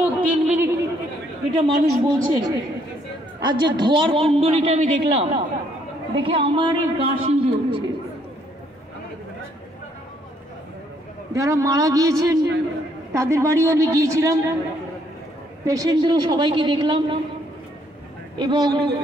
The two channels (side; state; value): both; normal; correlation 0.68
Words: 3 মিনিট এটা মানুষ বলছে, আর যে ধোয়ার কুণ্ডলিটা আমি দেখলাম, দেখে আমারই গা শিউরে উঠছে। যারা মারা গিয়েছেন তাদের বাড়িও আমি গিয়েছিলাম, পেশেন্টদেরও সবাইকে দেখলাম, এবং